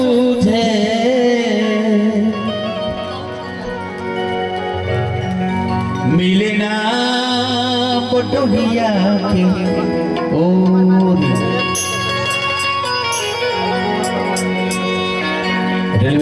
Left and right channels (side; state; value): both; identical; correlation 1.00